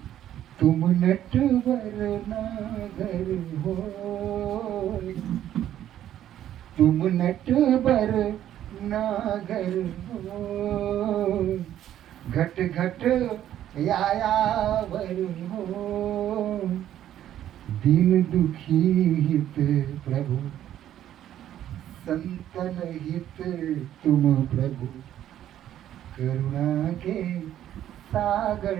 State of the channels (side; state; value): left; quieter; 11.6 dB